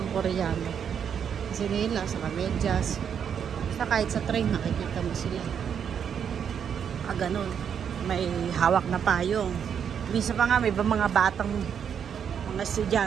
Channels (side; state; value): left; quieter; 7.9 dB